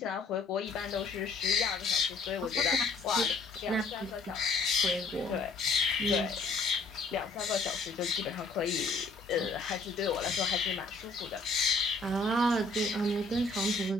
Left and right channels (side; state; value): right; quieter; 3.5 dB